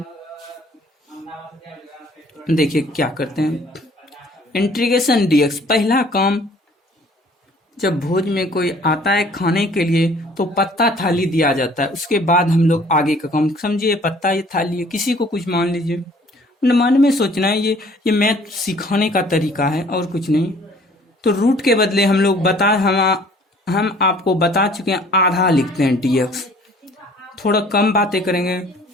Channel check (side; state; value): both; normal; correlation 0.55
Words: देखिए क्या करते हैं, इंटीग्रेशन डीएक्स पहला काम, जब भोज में कोई आता है खाने के लिए तो पत्ता थाली दिया जाता है, उसके बाद हम लोग आगे का काम समझिए। पत्ता ये थाली है, किसी को कुछ मान लीजिए, मन में सोचना है ये मैथ सिखाने का तरीका है और कुछ नहीं। तो रूट के बदले हम लोग हम आपको बता चुके हैं आधा लिखते हैं डीएक्स। थोड़ा कम बातें करेंगे,